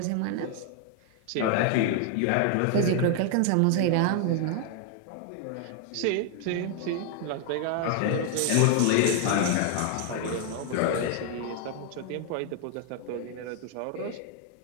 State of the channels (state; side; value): different; both; correlation 0.00